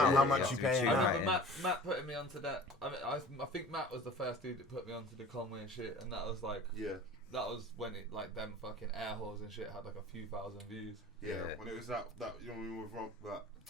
how You much have you to be paying? tuned I right remember in. Matt putting me onto that. I mean, I think Matt was the first dude that put me onto the Conway and shit, and that was like, that was when it like them fucking air holes and shit had like a few thousand views. Yeah. When it was that with Rock, that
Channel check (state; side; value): normal; both; correlation 0.43